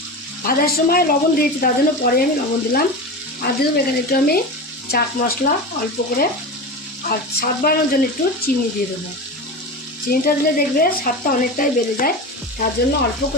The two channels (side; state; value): both; normal; correlation 0.25